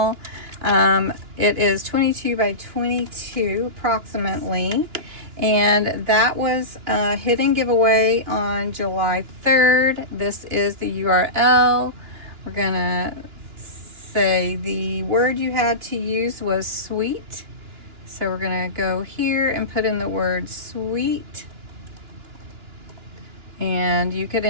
It is 22 by 22 approximately, and that was a hidden giveaway on July 3rd. This is the URL. We're gonna say the word you had to use was sweet. So we're gonna go here and put in the word sweet. And you could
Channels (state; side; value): late; left; 2.9 ms